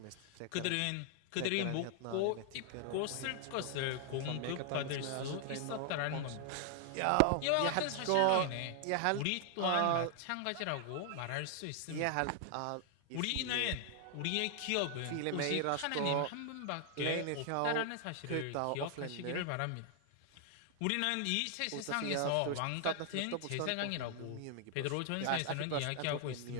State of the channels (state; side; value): different; both; correlation 0.00